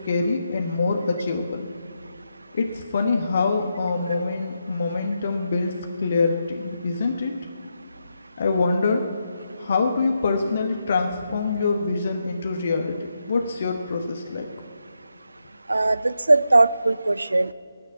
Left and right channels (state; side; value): inverted; both; correlation -0.84